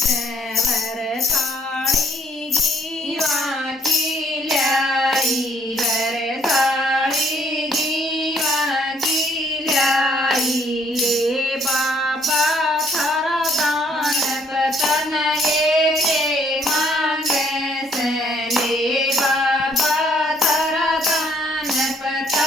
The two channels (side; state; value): both; normal; correlation 0.66